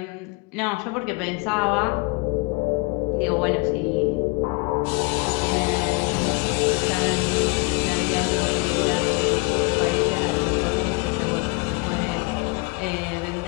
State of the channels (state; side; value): quieter; right; 28.9 dB